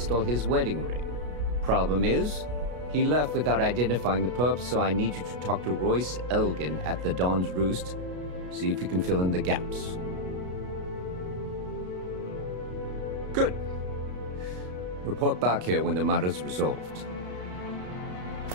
his wedding ring. Problem is, he left without identifying the perp, so I need you to talk to Royce Elgin at the Dawn's Roost. See if you can fill in the gaps. Good. Report back here when the matter's resolved.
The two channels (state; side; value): late; left; 33 ms